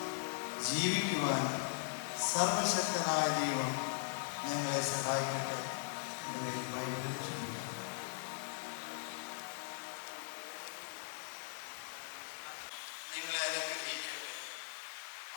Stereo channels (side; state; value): right; silent; 51 dB below the other